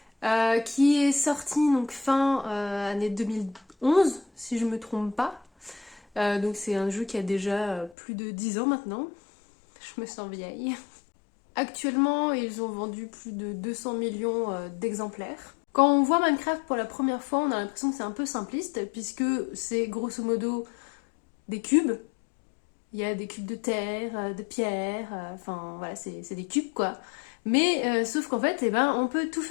qui est sorti donc fin année 2011 si je me trompe pas. Donc c'est un jeu qui a déjà plus de 10 ans maintenant. Je me sens vieille. Actuellement, ils ont vendu plus de 200 millions d'exemplaires. Quand on voit Minecraft pour la première fois, on a l'impression que c'est un peu simpliste, puisque c'est grosso modo des cubes. Il y a des cubes de terre, de pierre, enfin voilà, c'est des cubes quoi. Mais sauf qu'en fait, on peut tout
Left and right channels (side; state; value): right; drops out; at 8.0 s